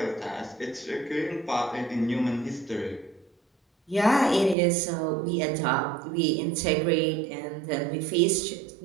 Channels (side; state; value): left; drops out; at 4.5 s